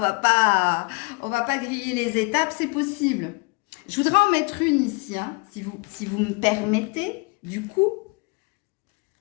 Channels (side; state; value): right; quieter; 28.4 dB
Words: on va pas griller les étapes, c'est possible. Je voudrais en mettre une ici, hein, si vous me permettez, du coup,